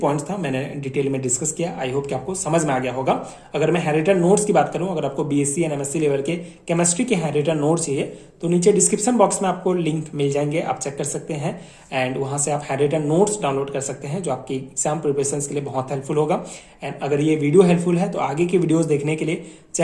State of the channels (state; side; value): identical; both; correlation 1.00